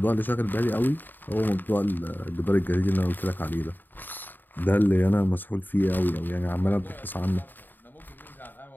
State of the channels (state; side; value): late; right; 0.091 ms